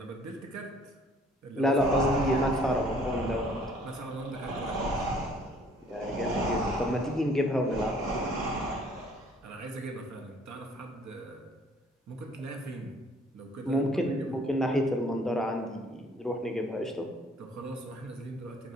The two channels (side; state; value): both; normal; correlation 0.58